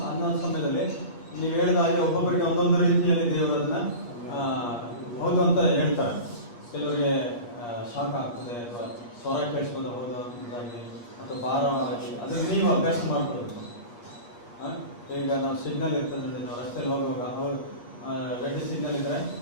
ಅನ್ನೋ ಸಮಯದಲ್ಲಿ ನೀವು ಹೇಳಿದ ಹಾಗೆ ಒಬ್ಬೊಬ್ಬರಿಗೆ ಒಂದೊಂದು ರೀತಿಯಲ್ಲಿ ದೇವರು ಅದನ್ನ ಹೌದು ಅಂತ ಹೇಳ್ತಾರೆ. ಕೆಲವರಿಗೆ ಶಾಕ್ ಆಗ್ತದೆ ಅಥವಾ ಸ್ವರ ಕೇಳಿಸ್ಬೋದು ಹೌದು ಅಂತಾಗಿ ಅಥವಾ ಭಾರವಾಗಿ, ಅದನ್ನು ನೀವು ಅಭ್ಯಾಸ ಮಾಡ್ಕೊಳ್ಬೇಕು. ಈಗ ನಾವು ಸಿಗ್ನಲ್ ಇರ್ತದೆ ನೋಡಿ, ನಾವು ರಸ್ತೆಯಲ್ಲಿ ಹೋಗುವಾಗ ರೆಡ್ ಸಿಗ್ನಲ್ ಇದ್ರೆ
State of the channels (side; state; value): right; late; 8.4 ms